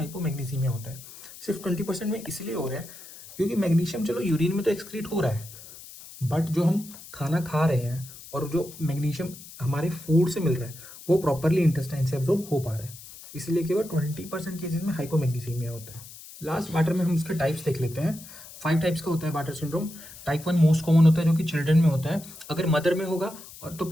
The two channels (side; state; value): left; noise; hiss, 17 dB below the sound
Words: होता है। सिर्फ 20% में इसलिए हो रहा है क्योंकि मैग्नीशियम चलो यूरिन में तो एक्सक्रीट हो रहा है, बट जो हम खाना खा रहे हैं और जो मैग्नीशियम हमारे फूड से मिल रहा है वो प्रॉपरली इंटेस्टाइन से एब्जॉर्ब हो पा रहा है, इसलिए केवल 20% केसेस में हाइपोमैग्नीसीमिया होता है। लास्ट बार्टर में हम इसके टाइप्स देख लेते हैं। 5 टाइप्स का होता है barter syndrome. Type 1 most common होता है जो कि चिल्ड्रन में होता है, अगर मदर में होगा और तो